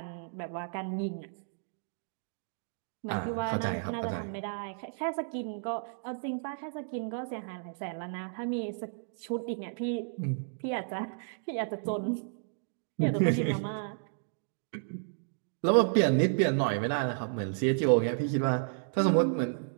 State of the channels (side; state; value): left; silent; digital silence